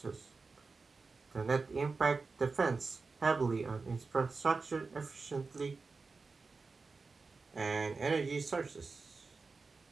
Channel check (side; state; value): left; quieter; 4.2 dB